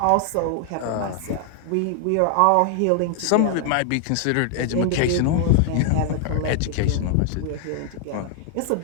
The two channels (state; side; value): different; both; correlation 0.00